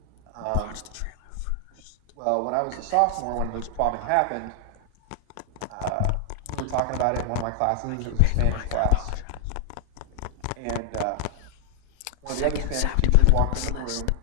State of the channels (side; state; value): both; different; correlation 0.00